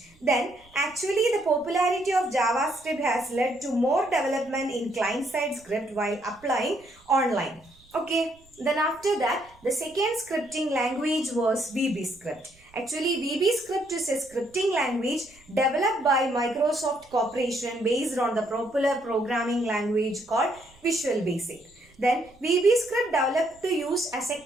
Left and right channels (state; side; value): noise; right; rumble, 29 dB below the sound